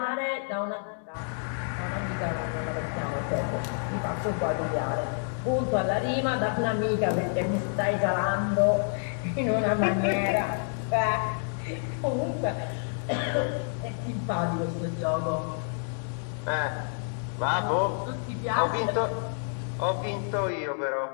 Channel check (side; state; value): right; silent; digital silence